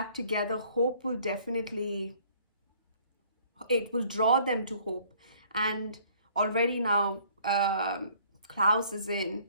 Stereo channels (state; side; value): inverted; both; correlation -0.58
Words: together, Hope will definitely, it will draw them to Hope. And already now Klaus is in,